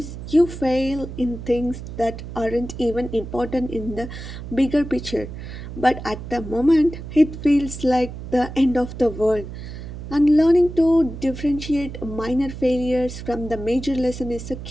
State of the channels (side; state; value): right; noise; hum, 10 dB below the sound